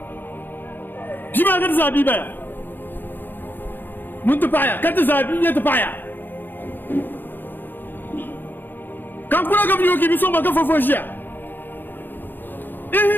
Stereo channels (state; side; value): late; right; 0.093 ms